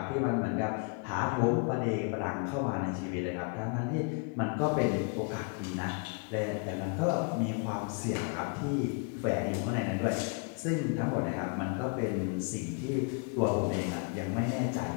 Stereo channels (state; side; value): quieter; right; 36.5 dB